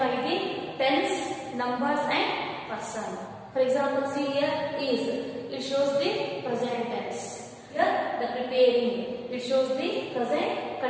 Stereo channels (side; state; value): both; identical; correlation 1.00